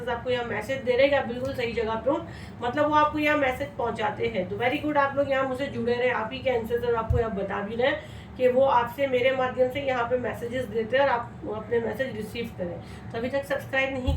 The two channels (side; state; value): both; identical; correlation 1.00